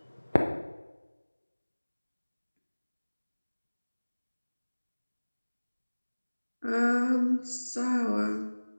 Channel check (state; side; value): inverted; both; correlation -1.00